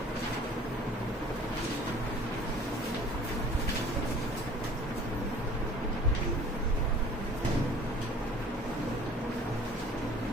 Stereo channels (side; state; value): both; normal; correlation 0.50